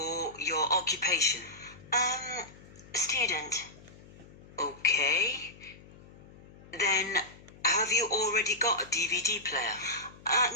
your occupation. Student. Okay. Then, have you already got a DVD player?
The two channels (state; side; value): noise; left; hum, 21 dB below the sound